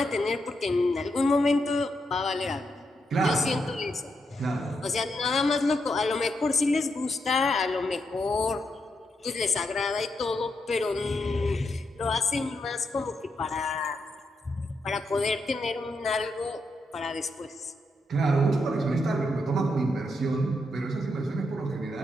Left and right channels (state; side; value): normal; both; correlation 0.82